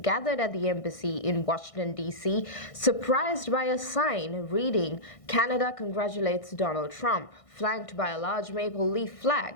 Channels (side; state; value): right; late; 1.6 ms